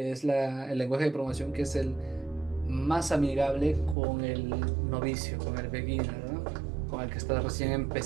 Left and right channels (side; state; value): left; drops out; at 4.0 s